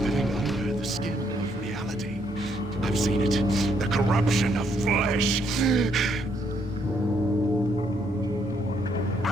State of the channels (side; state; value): both; normal; correlation 0.72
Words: living under the skin of reality. I've seen it, the corruption of flesh.